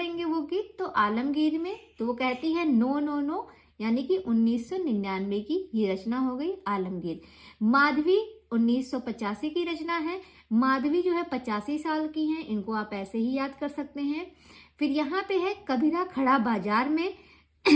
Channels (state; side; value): identical; both; correlation 1.00